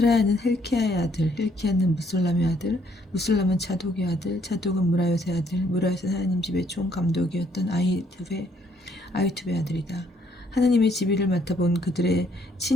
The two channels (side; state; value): both; normal; correlation 0.68